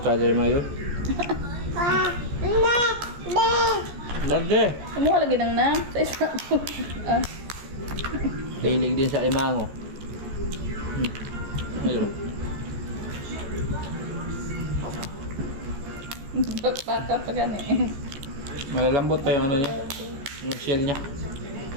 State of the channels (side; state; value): left; late; 14 ms